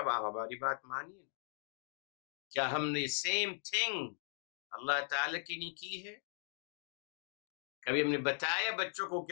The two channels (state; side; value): silent; right; 52 dB below the other